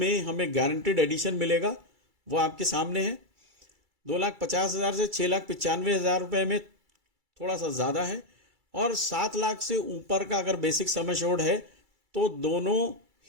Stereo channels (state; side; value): late; left; 2.3 ms